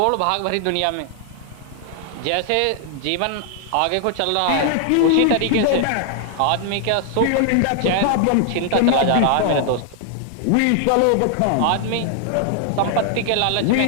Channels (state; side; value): different; both; correlation 0.00